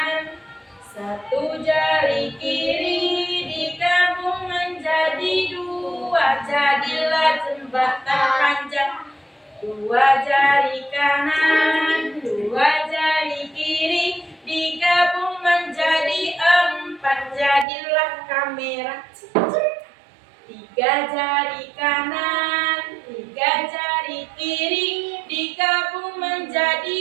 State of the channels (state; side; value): drops out; left; at 17.7 s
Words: satu jari kiri, digabung menjadi 2, jadilah jembatan panjang. 2 jari kanan, 2 jari kiri, digabung menjadi 4, jadilah kamera. 3 jari kanan, 3 jari kiri, digabung